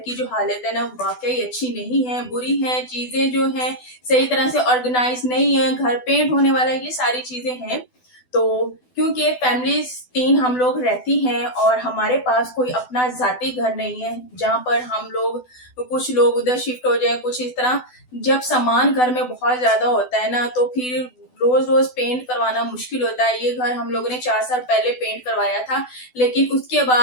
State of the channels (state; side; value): late; right; 12 ms